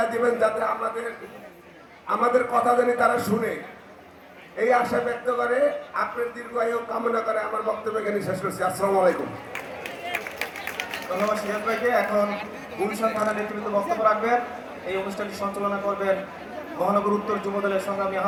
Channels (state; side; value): identical; both; correlation 1.00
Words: দিবেন যাতে আমাদের কথা জানি তারা শুনে, এই আশা ব্যক্ত করে আপনার দীর্ঘায়ু কামনা করে আমার বক্তব্য এখানে শেষ করছি। আসসালামু আলাইকুম। ধন্যবাদ সিরাজ ভাইকে। এখন গুলশান থানা নেতৃত্ব বক্তব্য রাখবেন। এই অনুষ্ঠানটি সঞ্চালনা করবেন মহানগর উত্তর যুব দলের সংগ্রামী